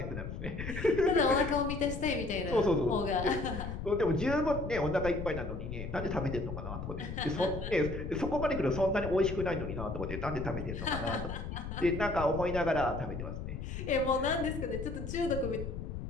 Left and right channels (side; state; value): left; noise; rumble, 6 dB below the sound